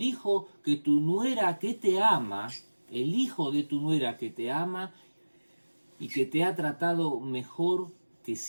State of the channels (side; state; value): both; inverted; correlation -1.00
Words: hijo que tu nuera que te ama, el hijo de tu nuera que te ama y que te ha tratado mejor que